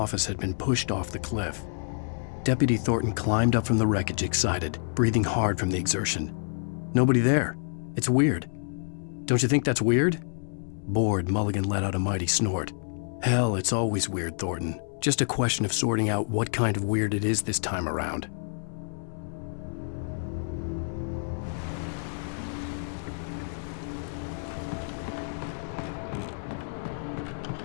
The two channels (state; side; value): silent; right; 58 dB below the other